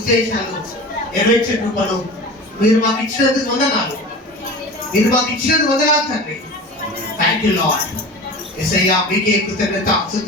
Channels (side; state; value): both; normal; correlation 0.34